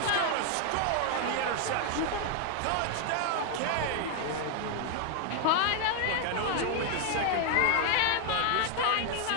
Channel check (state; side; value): different; both; correlation 0.00